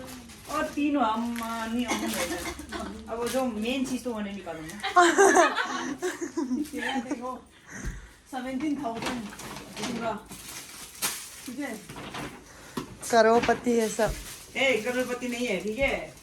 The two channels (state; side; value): identical; both; correlation 1.00